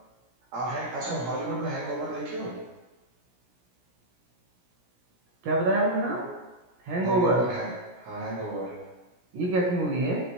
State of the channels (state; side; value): late; left; 17 ms